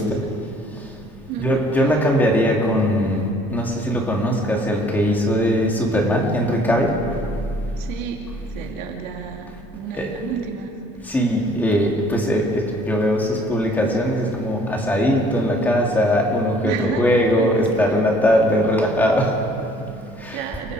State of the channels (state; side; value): normal; both; correlation 0.58